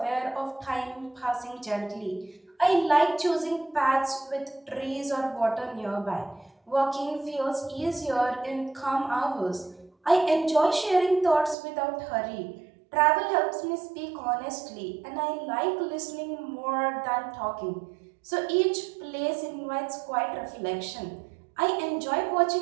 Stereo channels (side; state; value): left; drops out; at 11.6 s